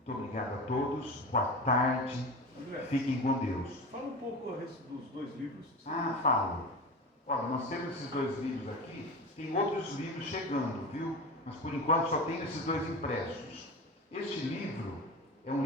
obrigado a todos, boa tarde, André, fiquem com Deus. fala um pouco a respeito dos dois livros. Falo. Olha, nós temos esses dois livros aqui, tem outros livros chegando, viu? Mas por enquanto só tenho esses dois impressos. Este livro é um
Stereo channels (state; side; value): normal; both; correlation 0.28